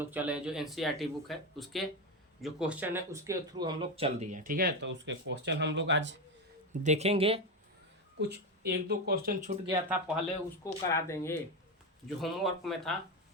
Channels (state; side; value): normal; both; correlation 0.14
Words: चले। जो एनसीईआरटी बुक है उसके जो क्वेश्चन है उसके थ्रू हम लोग चल दिए। ठीक है, तो उसके क्वेश्चन हम लोग आज देखेंगे। कुछ एक दो क्वेश्चन छूट गया था, पहले उसको करा देंगे जो होमवर्क में था,